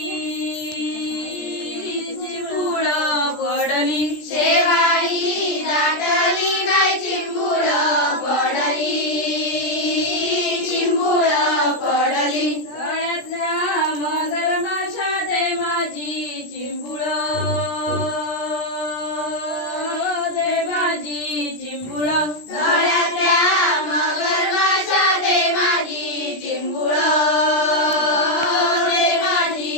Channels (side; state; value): right; late; 17 ms